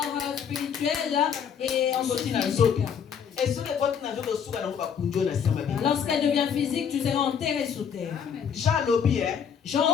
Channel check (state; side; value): quieter; right; 7.5 dB